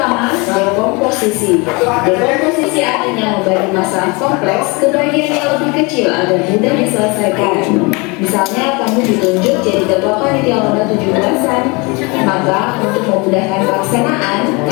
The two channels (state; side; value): quieter; right; 27.8 dB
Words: dekomposisi. Dekomposisi artinya membagi masalah kompleks ke bagian yang lebih kecil agar mudah diselesaikan. Misalnya, kamu ditunjuk jadi ketua panitia lomba 17-an. Maka, untuk memudahkan pelaksanaan,